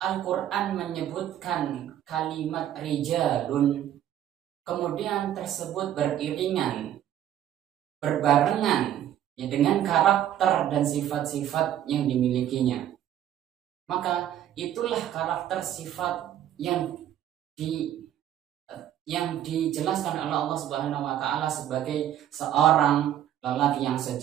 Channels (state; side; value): quieter; left; 11.3 dB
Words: Al-Quran menyebutkan kalimat rijalun, kemudian tersebut beriringan, berbarengan ya, dengan karakter dan sifat-sifat yang dimilikinya, maka itulah karakter sifat yang dijelaskan oleh Allah Subhanahu wa ta'ala sebagai seorang lelaki yang